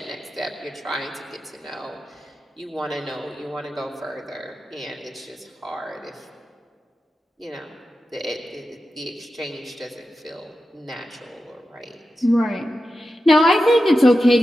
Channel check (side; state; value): both; normal; correlation 0.91